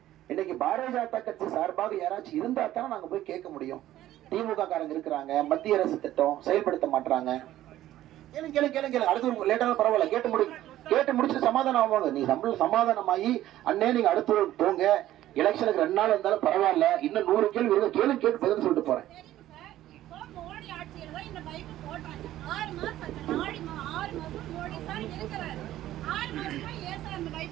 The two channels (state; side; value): quieter; left; 13.8 dB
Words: இன்னைக்கு பாரதிய ஜனதா கட்சி சார்பாக யாராச்சும் இருந்தா தானே நாங்க போய் கேட்க முடியும். திமுக காரங்க இருக்கிறாங்க, மத்திய அரசு திட்டம் செயல்படுத்த மாட்டாங்க. கேளுங்க கேளுங்க கேளுங்க கேளுங்க, அடுத்து லேட்டான பரவாயில்ல, கேட்டு முடிச்சுட்டு சமாதானம் ஆவாங்க. நீ சமாதானமாயி அண்ணே நீங்க அடுத்து போங்க, எலெக்ஷனுக்கு 2 நாள் இருந்தாலும் பரவாயில்ல, இன்னும் 100 கேள்வி இருக்கு, கேட்டு பதில் சொல்லிட்டு போறேன்.